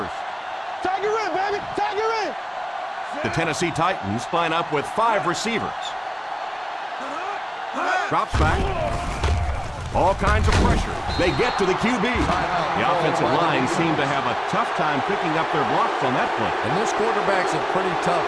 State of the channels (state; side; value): identical; both; correlation 1.00